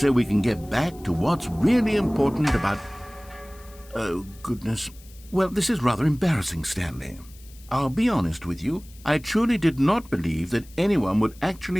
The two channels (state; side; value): noise; left; hiss, 24 dB below the sound